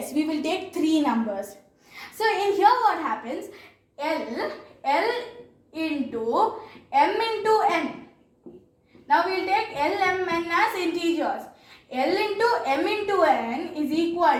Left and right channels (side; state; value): both; identical; correlation 1.00